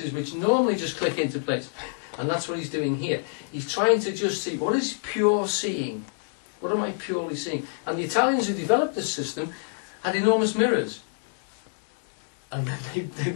which normally just click into place. And that's what he's doing here. He's trying to just see, what is pure seeing? What am I purely seeing? And the Italians who developed this system had enormous mirrors. And then they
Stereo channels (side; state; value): right; silent; digital silence